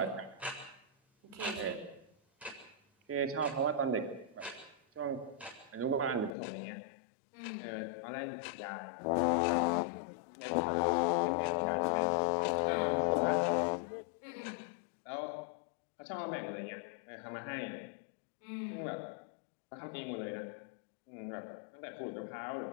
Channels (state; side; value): drops out; right; at 6.4 s